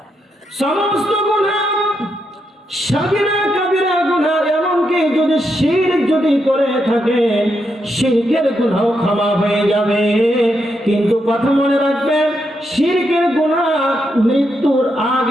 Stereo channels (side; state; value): both; normal; correlation 0.82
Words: সমস্ত গুনাহ, সাগীরা কাবীরা গুনাহ, এমনকি যদি শিরক যদি করে থাকে, শিরকের গুনাহ ক্ষমা হয়ে যাবে। কিন্তু কথা মনে রাখবেন, শিরকের গুনাহ মৃত্যুর